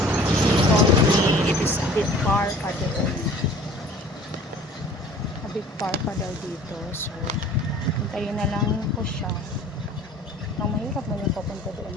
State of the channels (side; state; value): both; normal; correlation 0.48